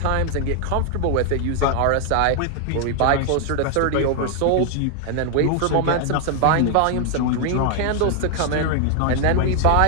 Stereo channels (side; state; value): both; different; correlation 0.00